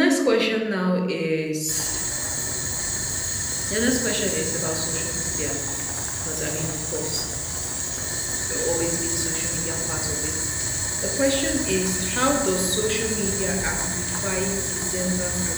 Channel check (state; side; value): identical; both; correlation 1.00